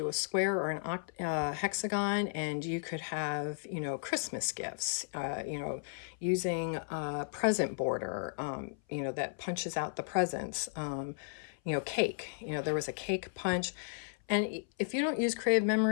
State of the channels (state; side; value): silent; right; 55 dB below the other